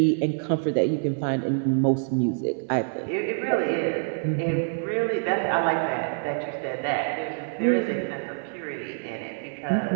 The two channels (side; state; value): left; silent; digital silence